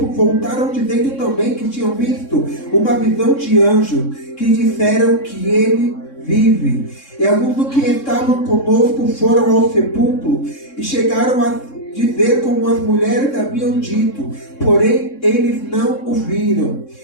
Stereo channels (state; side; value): late; right; 3.6 ms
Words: voltaram dizendo também que tinham visto uma visão de anjo, que disseram que ele vive. E alguns dos que estavam conosco foram ao sepulcro e chegaram a dizer como as mulheres haviam dito, porém eles não o viram.